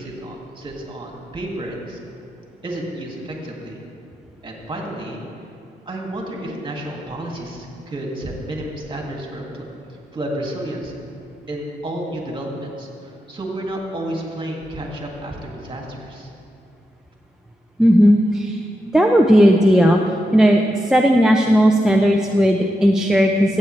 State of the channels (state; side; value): normal; both; correlation 0.87